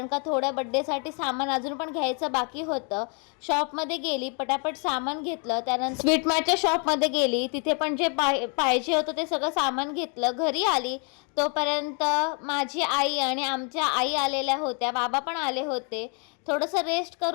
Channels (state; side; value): quieter; right; 38.1 dB